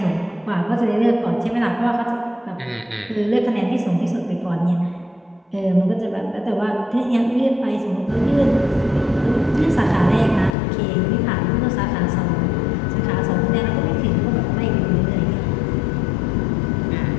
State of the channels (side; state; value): right; drops out; at 10.6 s